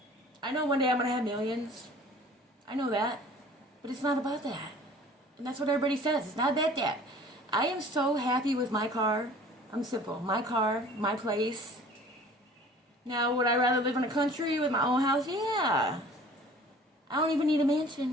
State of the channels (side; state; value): both; normal; correlation 0.48